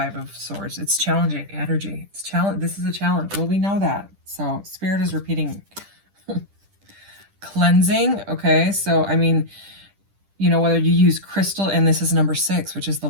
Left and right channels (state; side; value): late; left; 10 ms